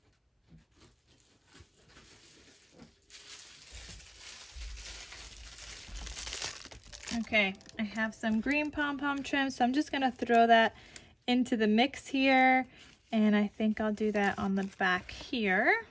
Okay, I have some green pom-pom trim, so I'm just gonna throw that into the mix here, and I think I'll do that on the back here.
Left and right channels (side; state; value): both; identical; correlation 1.00